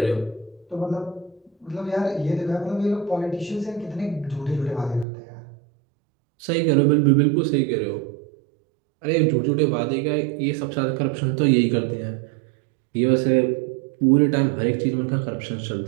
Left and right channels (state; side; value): drops out; left; at 5.1 s